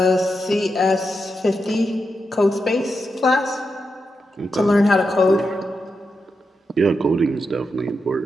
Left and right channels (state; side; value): normal; both; correlation 0.86